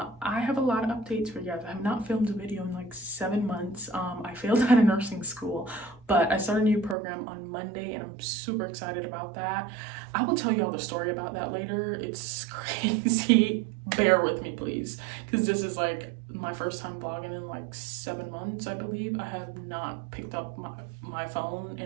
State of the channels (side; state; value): left; drops out; at 7.0 s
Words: have a lot of updates for you guys. I have not filmed a video in like 7 months. I failed out of nursing school, but I started a new program on Monday and I'm super excited about that. I will tell you all the story about that later. It's crazy. Bear with me, please, because this is like my first time vlogging in like 7 months, I believe. I have not picked up my phone